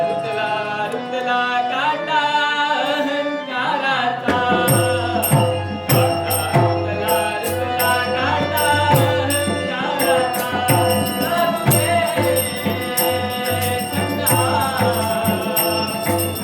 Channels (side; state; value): both; identical; correlation 1.00